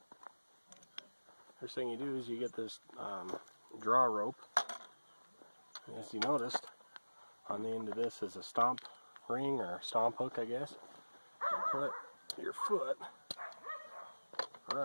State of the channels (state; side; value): inverted; both; correlation -1.00